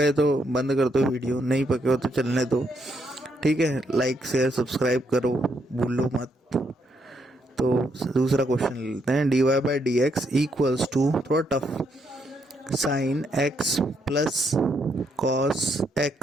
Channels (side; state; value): both; normal; correlation 0.76